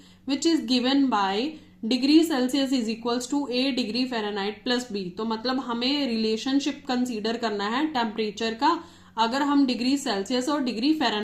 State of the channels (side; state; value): both; identical; correlation 1.00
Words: which is given by degree Celsius is equals to a degree Fahrenheit plus b। तो मतलब हमें relationship consider करना है टेम्परेचर का, अगर हम डिग्री सेल्सियस और degree